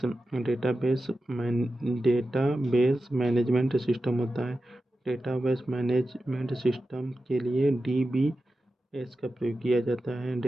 डेटाबेस मैनेजमेंट सिस्टम होता है। डेटाबेस मैनेजमेंट सिस्टम के लिए डीबीएस का प्रयोग किया जाता है।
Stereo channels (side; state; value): both; normal; correlation 0.92